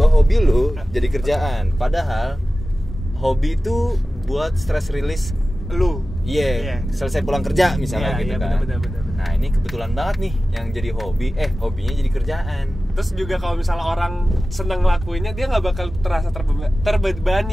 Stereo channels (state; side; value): normal; both; correlation 0.95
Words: hobi lu jadi kerjaan? Padahal hobi itu buat stress release Lu. Iya, selesai pulang kerja misalnya Iya, gitu iya, kan. benar. Nah, ini kebetulan banget nih yang jadi hobinya jadi kerjaan. Terus juga kalau misalnya orang seneng ngelakuinnya, dia nggak bakal terasa